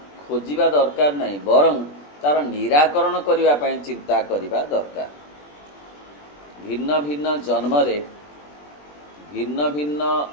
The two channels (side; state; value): right; late; 20 ms